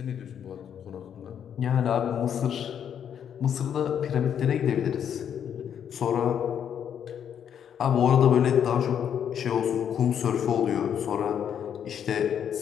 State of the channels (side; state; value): right; quieter; 8.7 dB